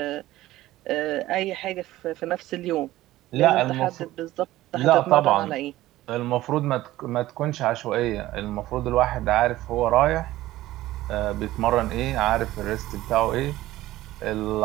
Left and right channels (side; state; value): left; quieter; 16.0 dB